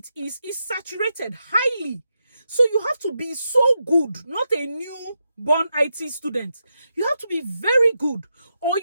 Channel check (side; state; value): both; inverted; correlation -0.85